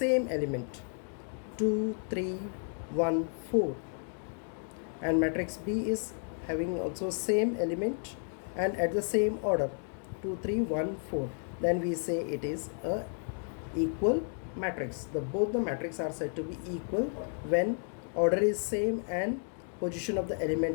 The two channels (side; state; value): right; silent; 56 dB below the other